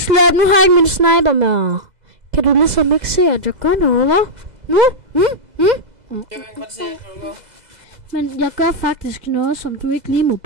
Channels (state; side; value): late; left; 2.0 ms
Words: Nu har jeg ikke min sniper med. Kan du ligesom ikke se, at jeg gør noget, hva'? Nu? Jeg kan godt se, at du gør. Men jeg gør faktisk noget, som du ikke lige må